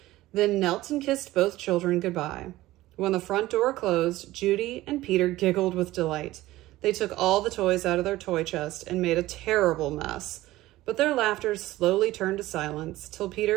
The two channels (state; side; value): quieter; left; 16.8 dB